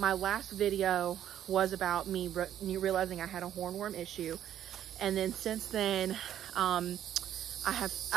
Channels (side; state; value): left; quieter; 10.9 dB